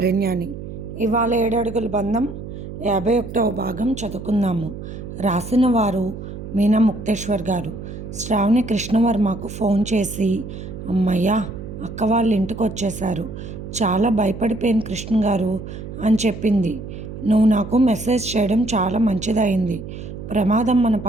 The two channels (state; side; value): noise; right; hum, 10 dB below the sound